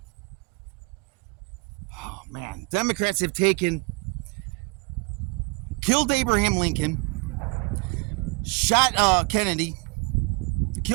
Democrats have killed Abraham Lincoln, shot Kennedy,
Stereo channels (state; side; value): quieter; left; 28.6 dB